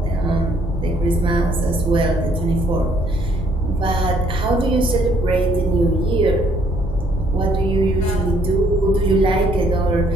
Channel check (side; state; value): both; normal; correlation 0.65